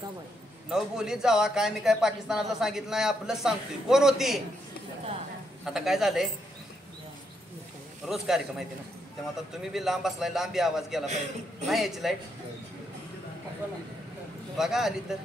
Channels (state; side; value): normal; both; correlation 0.78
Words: नव बोलीत जावा. काय मी काय पाकिस्तानाचं सांगितलं नाही, आपलंच सांगतोय. कोण होती? आता काय झालंय, रोज कार्यक्रम माहिती ना, तेव्हा आता तुम्ही बी लांब बसलाय, लांबी आवाज गेला पाहिजे. नाही याची लाईट बघा आली तर